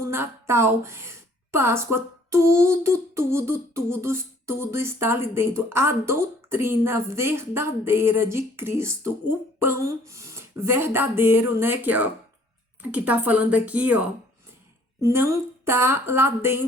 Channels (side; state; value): both; normal; correlation 0.58